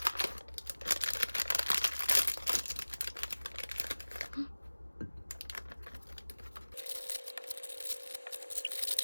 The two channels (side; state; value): both; inverted; correlation -1.00